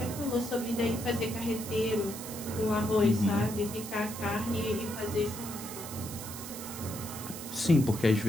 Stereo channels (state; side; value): noise; right; hiss, 10 dB below the sound